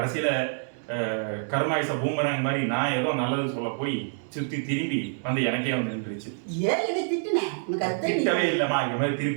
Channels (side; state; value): left; silent; 60 dB below the other